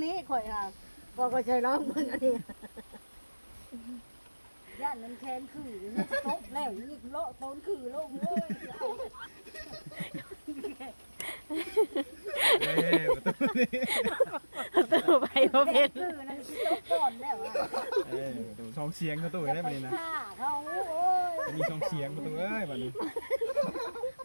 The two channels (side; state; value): both; inverted; correlation -1.00